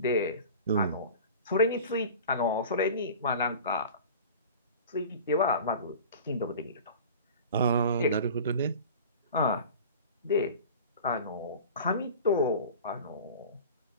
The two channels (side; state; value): both; inverted; correlation -0.38